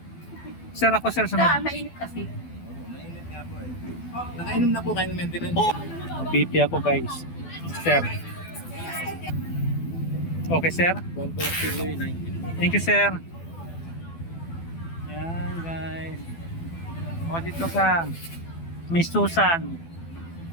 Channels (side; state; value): right; late; 12 ms